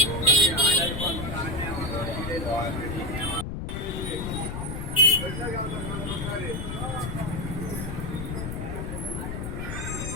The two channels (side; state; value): left; noise; rumble, 5 dB below the sound